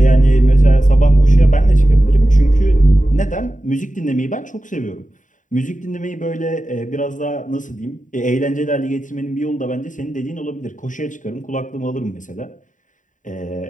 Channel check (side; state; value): right; late; 0.37 ms